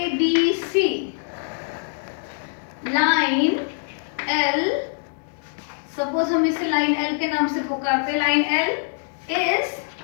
line L, सपोज हम इसे लाइन L के नाम से पुकारते हैं। Line L is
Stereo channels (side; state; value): right; silent; 63 dB below the other